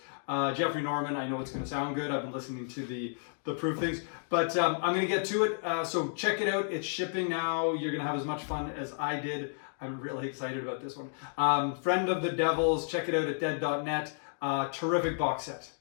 Jeffrey Norman, I know it's going to sound good. I've been listening to the proof things, but I'm going to get to it. So check it out. It's shipping now. You're going to have as much fun as I did. I'm really excited about this one. Friend of the Devils, check it out at dead.net. Terrific box set.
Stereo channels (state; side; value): silent; right; digital silence